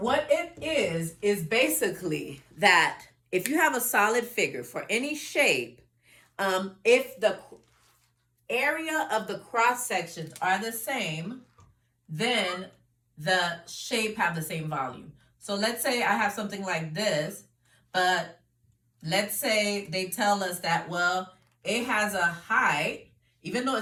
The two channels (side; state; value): both; identical; correlation 1.00